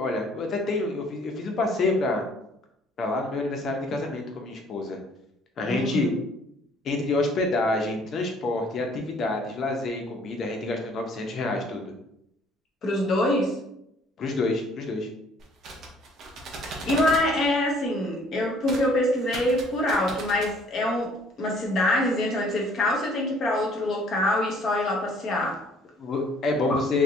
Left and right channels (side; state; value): both; normal; correlation 0.58